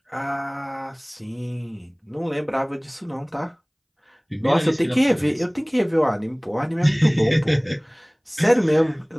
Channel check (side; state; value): both; identical; correlation 1.00